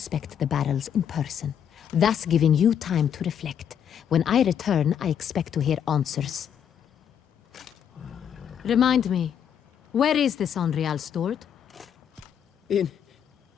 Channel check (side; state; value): right; quieter; 8.7 dB